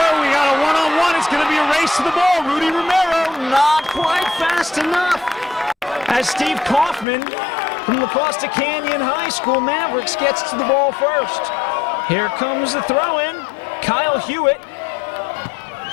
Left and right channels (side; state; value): right; drops out; at 7.1 s